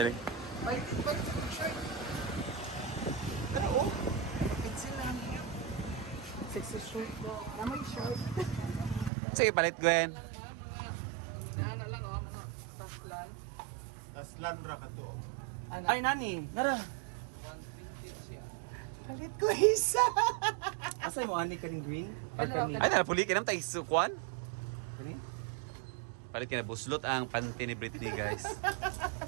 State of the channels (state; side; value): drops out; left; at 9.1 s